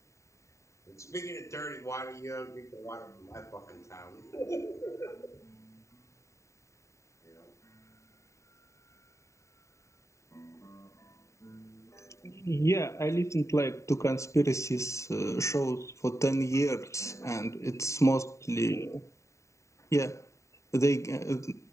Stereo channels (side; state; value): right; late; 0.14 ms